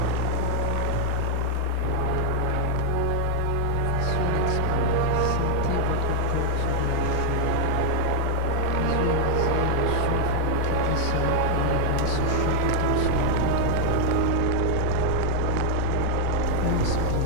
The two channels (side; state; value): both; different; correlation -0.01